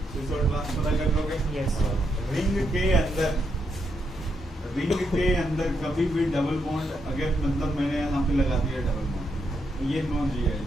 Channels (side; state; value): both; normal; correlation 0.80